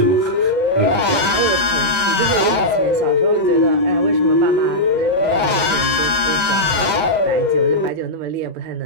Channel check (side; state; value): left; late; 6.7 ms